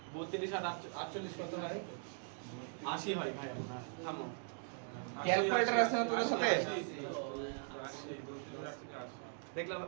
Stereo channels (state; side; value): silent; left; 51 dB below the other